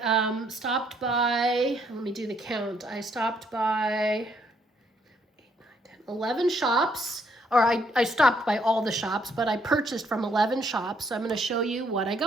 stopped by, let me do the count. I stopped by 8, 9, 10, 11 shops. Or I stopped by all the shops, but I purchased from 11 shops. So I'm going to show you what I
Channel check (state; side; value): normal; both; correlation 0.70